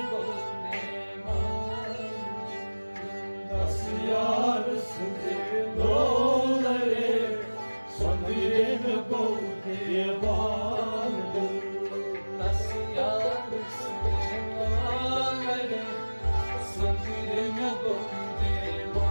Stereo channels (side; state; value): both; inverted; correlation -1.00